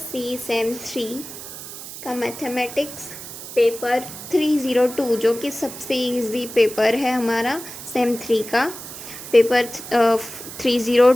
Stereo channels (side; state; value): right; noise; hiss, 12 dB below the sound